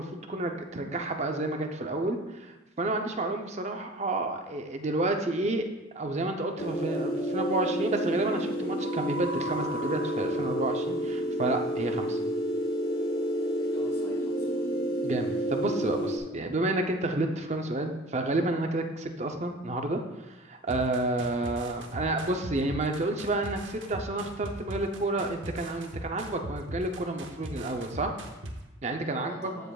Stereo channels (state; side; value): normal; both; correlation 0.43